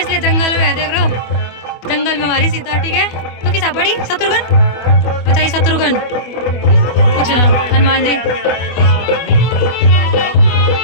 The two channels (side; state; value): right; late; 24 ms